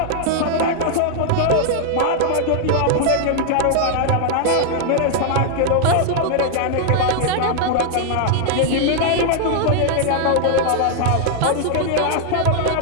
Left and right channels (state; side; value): different; both; correlation 0.00